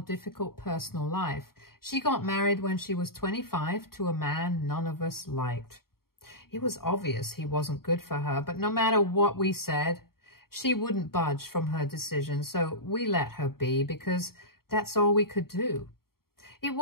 personal life. She got married when she was 25 to a man none of us liked. It was obvious he wasn't good for her, but no matter what we said, she wouldn't budge from her decision, so we let her be because that's all we could do. It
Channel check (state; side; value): late; right; 0.93 ms